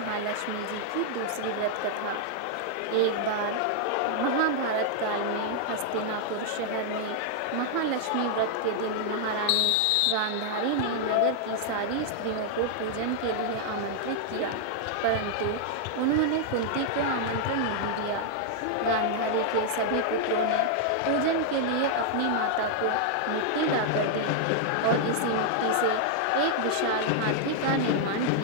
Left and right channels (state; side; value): different; both; correlation -0.01